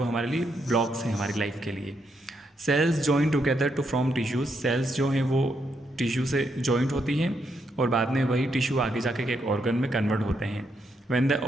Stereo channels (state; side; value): normal; both; correlation 0.79